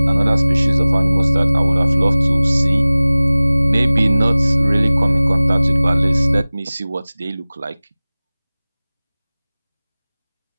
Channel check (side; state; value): both; inverted; correlation -0.98